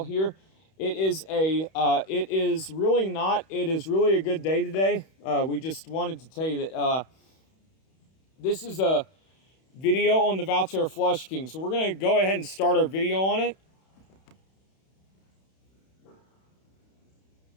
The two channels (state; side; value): late; right; 31 ms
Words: here, it is really a good day today. We just wanted to tell you that this is a video on the Valterra Flush King. So we're going to go ahead and start our video on it.